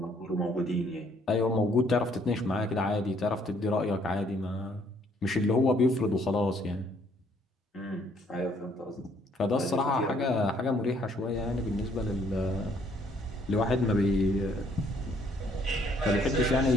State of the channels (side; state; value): both; normal; correlation 0.65